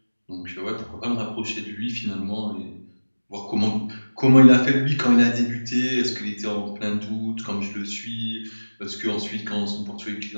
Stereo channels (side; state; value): both; inverted; correlation -1.00